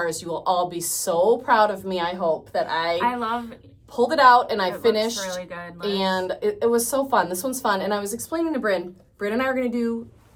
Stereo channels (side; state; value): both; identical; correlation 1.00